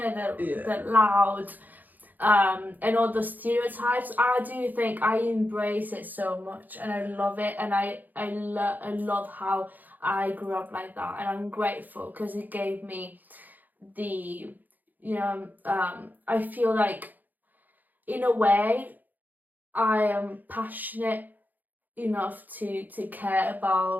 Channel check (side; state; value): left; late; 0.084 ms